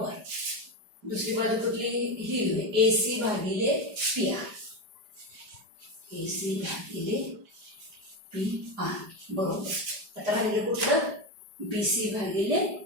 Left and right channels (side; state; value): left; late; 5.0 ms